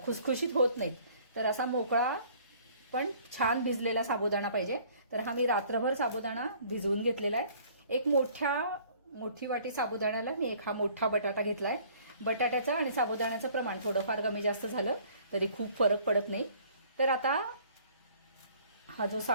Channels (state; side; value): inverted; both; correlation -0.55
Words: खुसखुशीत होत नाहीत। तर असा मोकळा पण छान भिजलेला साबुदाणा पाहिजे। तर हा मी रात्रभर साबुदाणा भिजवून घेतलेला आहे। एक मोठी वाटी साबुदाण्याला मी एक हा मोठा बटाटा घेतलाय। बटाट्याचं आणि साबुदाण्याचं प्रमाण थोडंफार कमी जास्त झालं तरी खूप फरक पडत नाही। तर आता हा जो